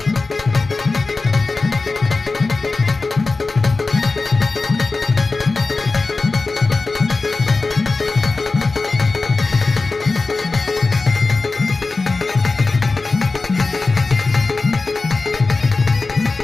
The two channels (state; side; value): quieter; right; 3.7 dB